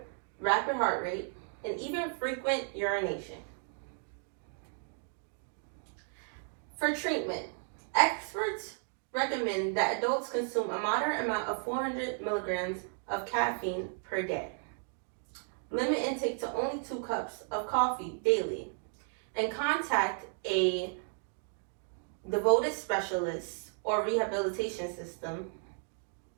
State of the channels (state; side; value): silent; left; 55 dB below the other